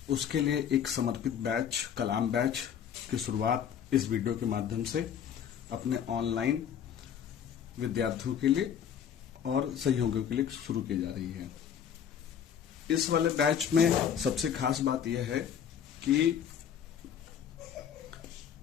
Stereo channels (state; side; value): quieter; right; 8.6 dB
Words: उसके लिए एक समर्पित बैच कलाम बैच की शुरुआत इस वीडियो के माध्यम से अपने ऑनलाइन विद्यार्थियों के लिए और सहयोगियों के लिए शुरू की जा रही है। इस वाले बैच में सबसे खास बात यह है कि